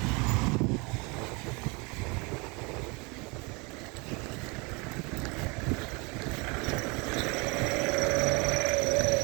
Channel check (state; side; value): quieter; left; 28.4 dB